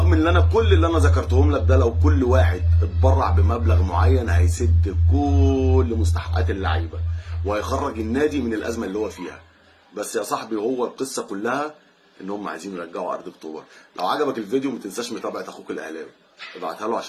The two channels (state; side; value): identical; both; correlation 1.00